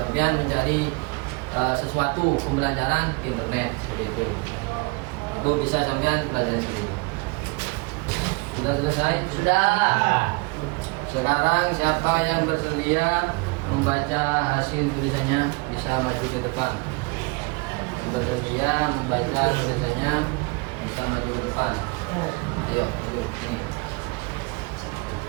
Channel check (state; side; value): quieter; left; 29.1 dB